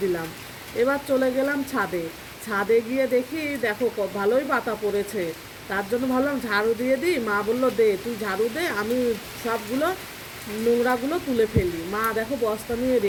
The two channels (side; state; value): both; identical; correlation 1.00